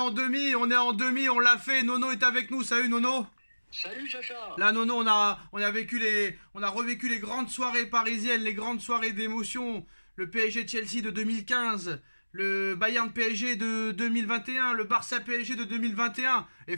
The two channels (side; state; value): both; inverted; correlation -1.00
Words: demi, on l'a fait, Nono est avec nous, salut Nono. Salut Sacha. Là Nono, on a revécu les grandes soirées parisiennes, les grandes soirées d'émotion, le PSG Chelsea de 2015, le Bayern PSG de 2021, le Barça PSG de 2021. Et